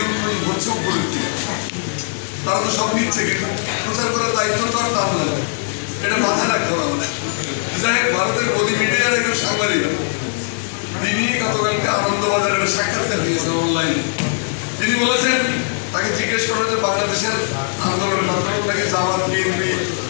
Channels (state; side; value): silent; right; digital silence